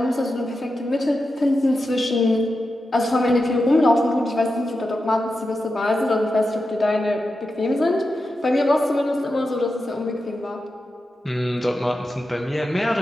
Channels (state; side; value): normal; both; correlation 0.90